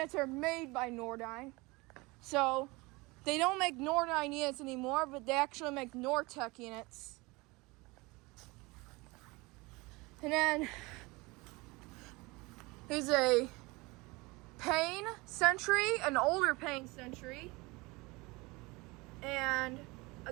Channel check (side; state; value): left; quieter; 24.2 dB